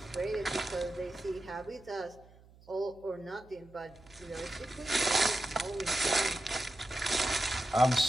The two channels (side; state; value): right; noise; hum, 25 dB below the sound